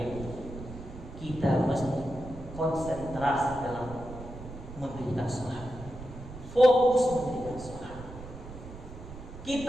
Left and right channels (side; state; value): right; noise; rumble, 13 dB below the sound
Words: kita mesti konsentrasi dalam mendirikan sholat, fokus mendirikan sholat.